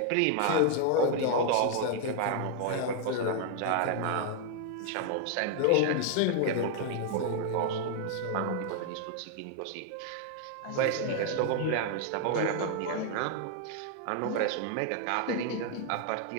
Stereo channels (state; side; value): different; both; correlation 0.00